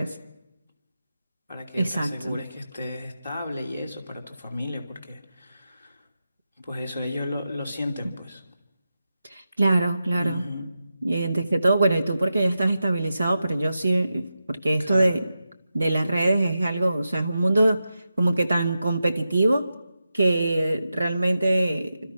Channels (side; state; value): both; inverted; correlation -0.90